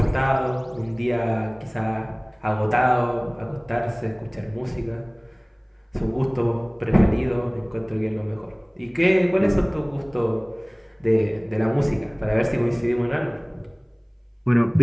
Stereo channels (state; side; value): identical; both; correlation 1.00